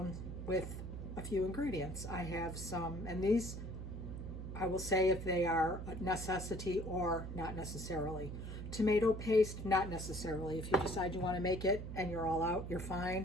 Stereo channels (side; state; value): right; noise; hum, 7 dB below the sound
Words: with a few ingredients. I have some, and these I will say if they are a necessity or not necessarily. Tomato paste, not necessarily. If you decide you want to make it and you're all out, you're